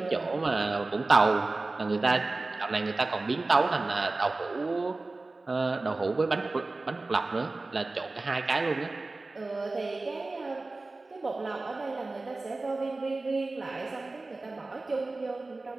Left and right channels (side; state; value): left; quieter; 3.3 dB